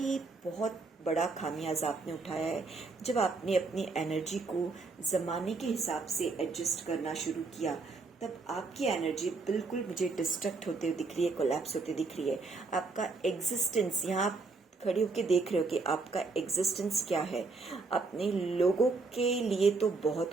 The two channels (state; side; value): quieter; left; 3.9 dB